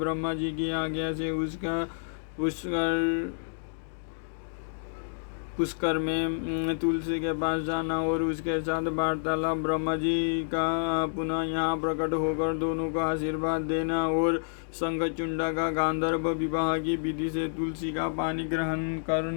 जी की आज्ञा से उसका पुष्कर में तुलसी के पास जाना और उसके साथ वार्तालाप। ब्रह्मा जी का पुनः यहाँ प्रकट होकर दोनों को आशीर्वाद देना और शंखचूंड का गांधर्व विवाह की विधि से तुलसी का पानी ग्रहण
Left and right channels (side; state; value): right; silent; digital silence